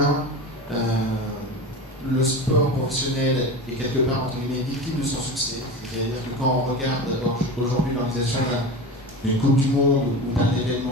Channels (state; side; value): normal; both; correlation 0.28